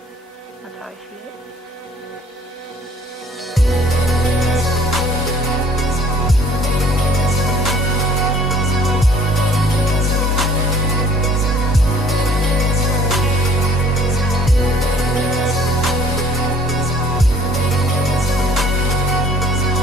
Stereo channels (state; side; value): normal; both; correlation 0.55